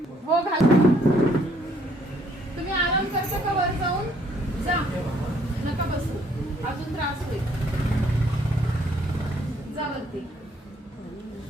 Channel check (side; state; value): both; normal; correlation 0.66